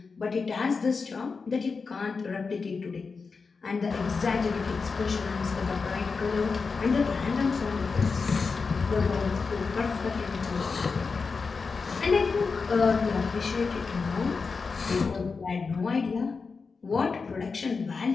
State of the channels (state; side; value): quieter; right; 4.8 dB